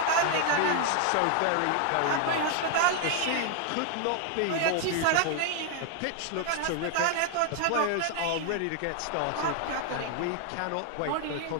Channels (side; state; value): both; different; correlation 0.00